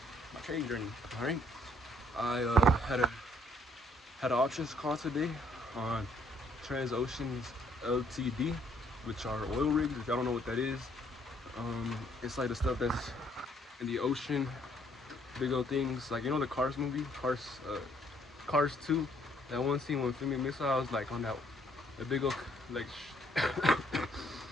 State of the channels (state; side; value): normal; both; correlation 0.66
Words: my trading journey. All right, I had an options call today on Transoceans Ltd, which are oil rigs. If y'all don't know what that is, it's like the stuff that's in the ocean, big old things, like, you know, the Cars movie, Cars 2, that one scene when filming missiles, like on that, the big old, like,